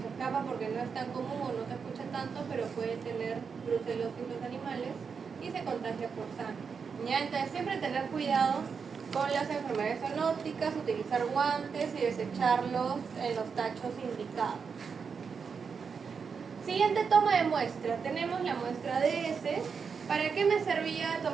escapa porque no es tan común o no se escucha tanto, pero puede tener brucelosis los animales y se contagia por sangre. ¿Ya? Entonces siempre tener cuidado con las enfermedades zoonóticas, utilizar guantes y desecharlos en los tachos indicados. Siguiente toma de muestra. Tenemos la muestra de heces. ¿Para qué me servía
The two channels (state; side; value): quieter; left; 5.9 dB